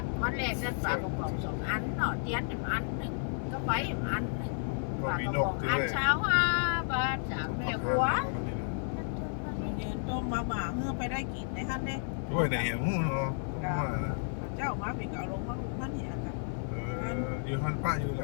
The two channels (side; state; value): right; silent; 56 dB below the other